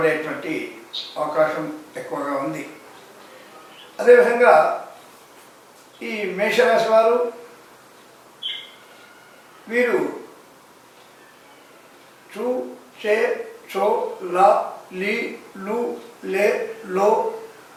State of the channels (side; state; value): both; identical; correlation 1.00